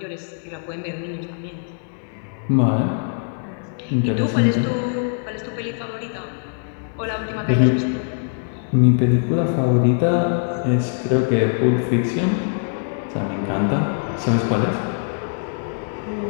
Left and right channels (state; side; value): silent; right; digital silence